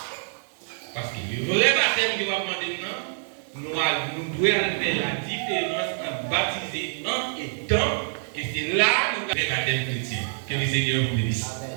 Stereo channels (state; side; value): silent; left; digital silence